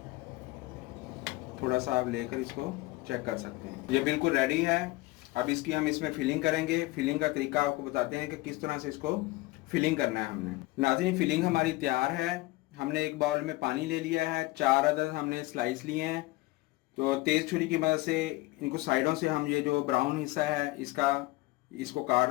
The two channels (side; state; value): right; quieter; 20.4 dB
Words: थोड़ा सा आप लेकर इसको चेक कर सकते हैं। ये बिल्कुल रेडी है। अब इसकी हम इसमें फिलिंग करेंगे। फिलिंग का तरीका आपको बताते हैं कि किस तरह से इसको फिलिंग करना है हमने। नाज़रीन, फिलिंग हमारी तैयार है। हमने एक बाउल में पानी ले लिया है, 4 अदद हमने स्लाइस लिए हैं। तो तेज़ छुरी की मदद से इनको साइडों से हम ये जो ब्राउन हिस्सा है इसको काट